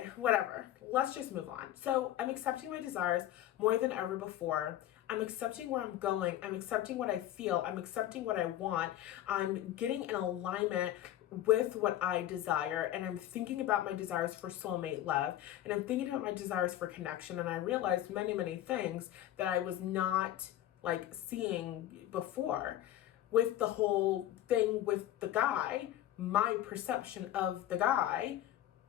whatever. Let's just move on. So I'm accepting my desires more than ever before. I'm accepting where I'm going. I'm accepting what I feel. I'm accepting what I want. I'm getting in alignment with what I desire. And I'm thinking about my desires for soulmate love. And I'm thinking about my desires for connection. And I realized many, many things that I was not like seeing before. With the whole thing with the guy, my perception of the guy,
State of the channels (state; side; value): quieter; right; 13.0 dB